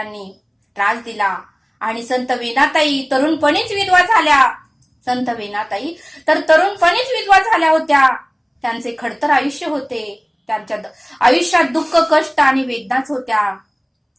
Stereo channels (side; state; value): both; identical; correlation 1.00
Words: त्रास दिला आणि संत वीणाताई तरुणपणीच विधवा झाल्या होत्या. त्यांचे खडतर आयुष्य होते, त्यांच्या आयुष्यात दुःख, कष्ट आणि वेदनाच होत्या,